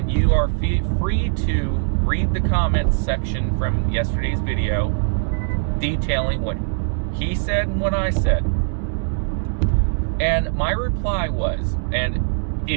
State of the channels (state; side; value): silent; left; 65 dB below the other